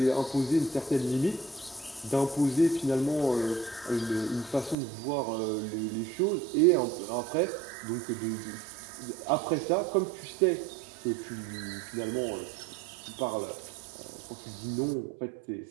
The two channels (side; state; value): left; drops out; at 4.8 s